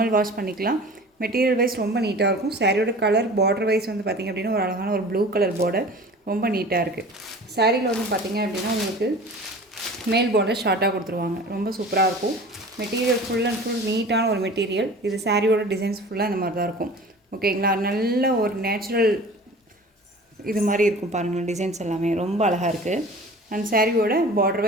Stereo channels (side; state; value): both; normal; correlation 0.41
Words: வாஷ் பண்ணிக்கலாம். மெட்டீரியல் வைஸ் ரொம்ப நீட்டாக இருக்கும். சாரியோட கலர் பார்டர் வைஸ் வந்து பார்த்திங்க அப்படின்னா ஒரு அழகான ஒரு ப்ளூ கலர் பார்டர், ரொம்ப நீட்டாக இருக்குது. சாரியில் வந்து பார்த்திங்க அப்படின்னா உங்களுக்கு மேல் பார்டர் ஷார்ட்டாக கொடுத்துருவாங்க. ரொம்ப சூப்பராக இருக்கும். மெட்டீரியல் ஃபுல் அண்ட் ஃபுல் நீட்டான ஒரு மெட்டீரியல். இது சாரியோட டிசைன்ஸ் ஃபுல்லாக இந்த மாதிரி தான் இருக்கும். ஓகேங்களா? நல்ல ஒரு நேச்சுரல் இது மாதிரி இருக்கும் பாருங்கள். டிசைன்ஸ் எல்லாமே ரொம்ப அழகாக இருக்குது. அண்ட் சாரியோட பார்டர்